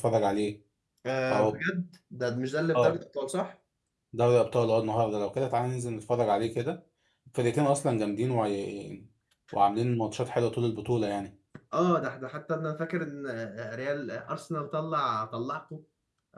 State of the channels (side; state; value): both; identical; correlation 1.00